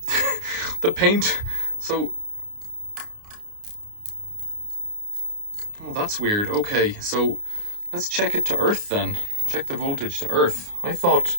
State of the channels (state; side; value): late; left; 29 ms